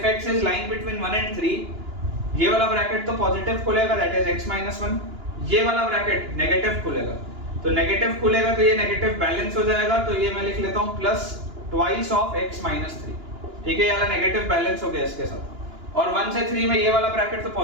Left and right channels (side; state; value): left; late; 2.9 ms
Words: x is line between 1 and 3, ये वाला ब्रैकेट तो पॉजिटिव खुलेगा, दैट इज x - 1। ये वाला ब्रैकेट नेगेटिव खुलेगा, तो नेगेटिव खुलेगा तो ये नेगेटिव बैलेंस हो जाएगा। तो ये मैं लिख लेता हूं प्लस ट्वाइस ऑफ x - 3। ठीक है, ये वाला नेगेटिव बैलेंस हो गया इसके साथ। और 1 से 3 में ये वाला ब्रैकेट तो